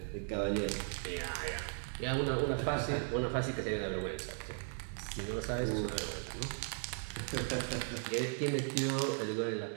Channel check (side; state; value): left; silent; 53 dB below the other